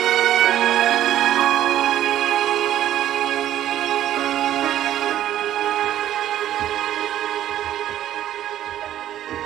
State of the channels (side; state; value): left; quieter; 12.1 dB